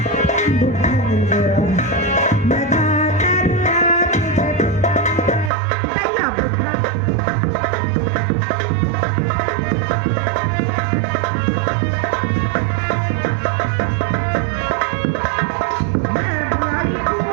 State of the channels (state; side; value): drops out; left; at 5.5 s